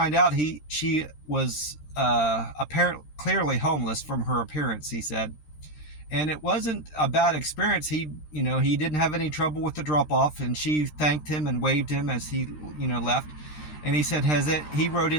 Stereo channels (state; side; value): late; right; 13 ms